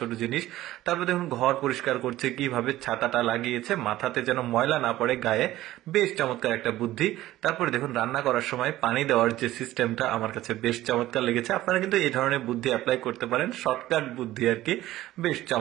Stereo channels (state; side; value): quieter; left; 15.3 dB